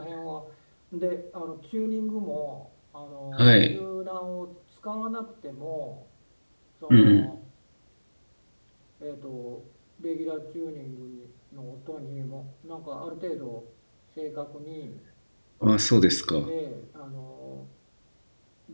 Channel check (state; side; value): inverted; both; correlation -1.00